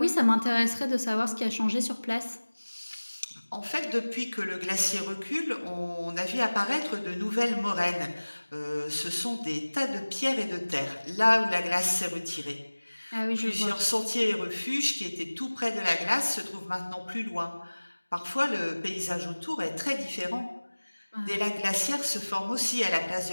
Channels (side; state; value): both; inverted; correlation -1.00